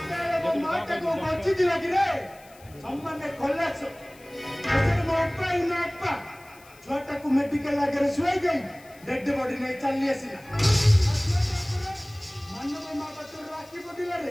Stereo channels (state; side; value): noise; left; hiss, 25 dB below the sound